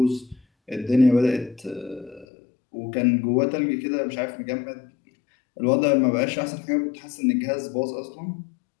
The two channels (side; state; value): right; drops out; at 2.2 s